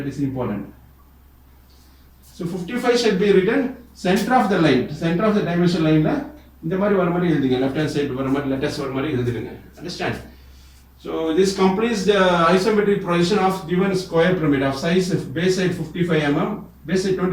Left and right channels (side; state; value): both; identical; correlation 1.00